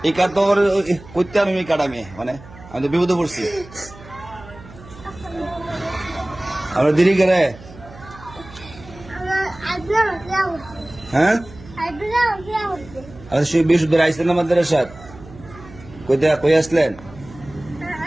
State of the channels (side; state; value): right; noise; hum, 19 dB below the sound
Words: এই কাঠ তো করতে আমি এই কাঠ আমি মানে আমি তো বিপদে পড়ছি। আমরা দেরি করে হ্যাঁ আচ্ছা বিশুদ্ধ আইসলেন আমাদের সাথে কই আসলেন?